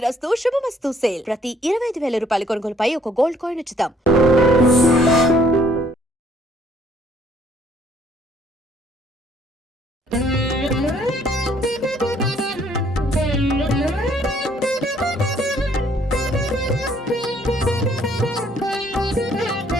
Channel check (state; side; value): normal; both; correlation 0.64